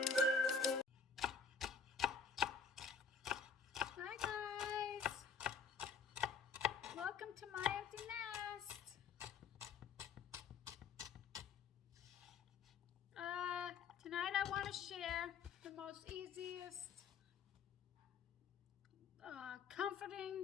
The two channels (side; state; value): right; quieter; 5.6 dB